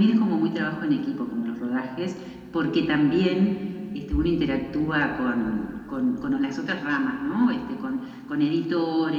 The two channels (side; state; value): both; identical; correlation 1.00